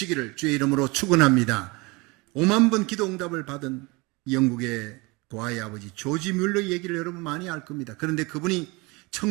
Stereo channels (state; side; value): quieter; left; 25.6 dB